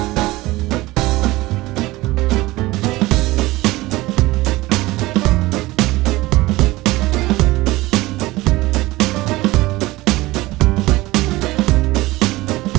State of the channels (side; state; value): left; quieter; 19.3 dB